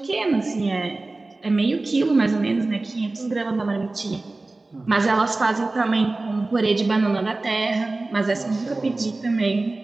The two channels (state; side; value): quieter; left; 3.2 dB